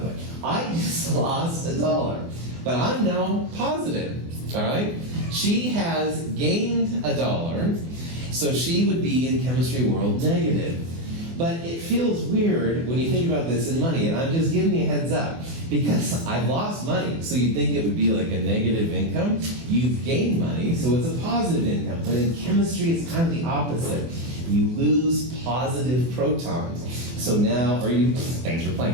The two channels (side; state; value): left; late; 24 ms